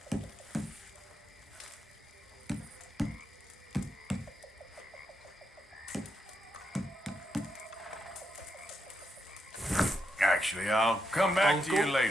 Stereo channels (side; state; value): both; normal; correlation 0.83